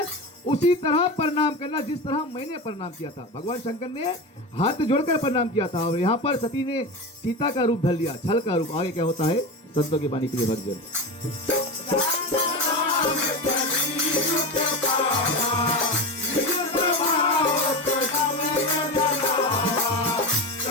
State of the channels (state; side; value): normal; both; correlation 0.21